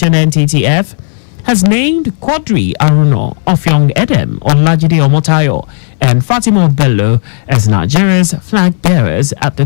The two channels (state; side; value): silent; right; 65 dB below the other